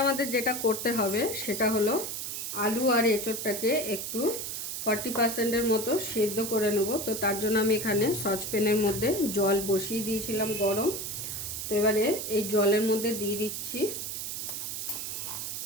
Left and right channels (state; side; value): noise; right; hiss, 5 dB below the sound